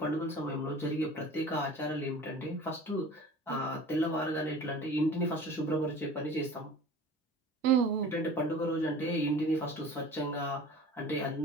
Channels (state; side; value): normal; both; correlation 0.41